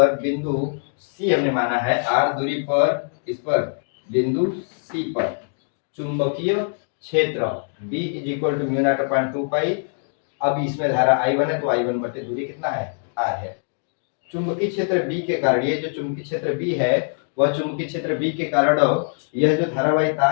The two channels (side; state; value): right; silent; digital silence